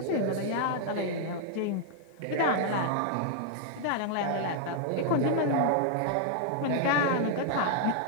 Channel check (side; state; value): both; different; correlation 0.00